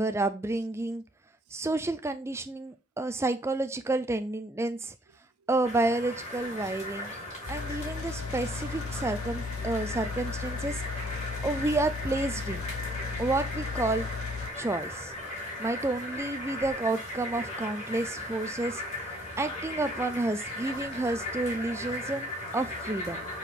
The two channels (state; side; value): normal; both; correlation 0.62